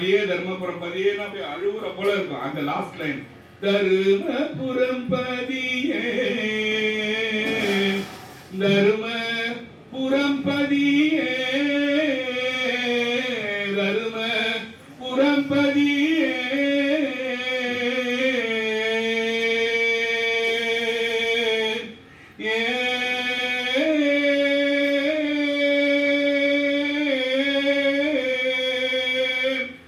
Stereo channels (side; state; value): both; identical; correlation 1.00